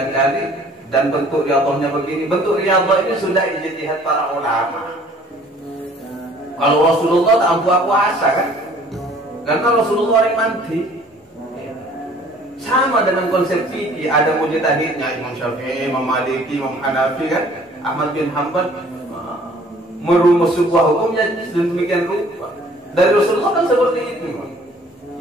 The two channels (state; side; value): normal; both; correlation 0.54